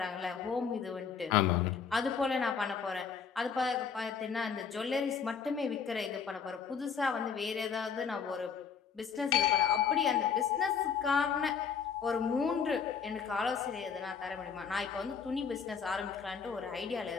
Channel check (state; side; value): quieter; right; 6.5 dB